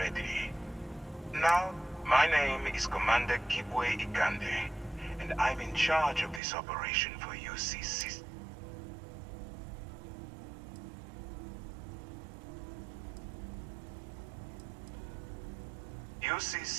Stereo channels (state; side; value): drops out; left; at 6.4 s